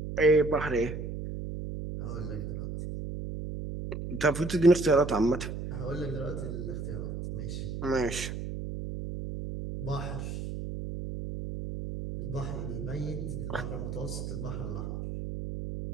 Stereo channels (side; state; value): right; noise; hum, 6 dB below the sound